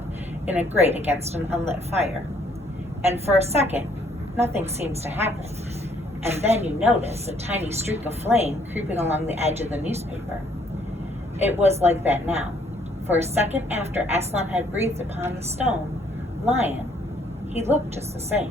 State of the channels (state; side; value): normal; both; correlation 0.65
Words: in a grate against an unlit fire. And for a second, nothing seems to happen. And then you notice a tiny streak of flame creeping along the edge of the newspaper. It was like that now. For a second after Aslan had breathed upon the stone lion, he looked just the